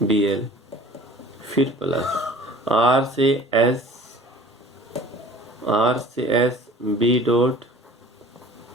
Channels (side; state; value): both; normal; correlation 0.46